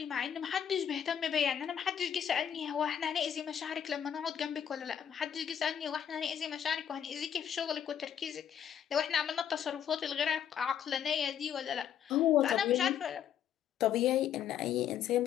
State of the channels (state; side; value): quieter; right; 9.1 dB